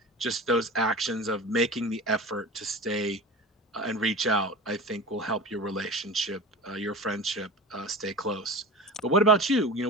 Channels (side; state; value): both; normal; correlation 0.33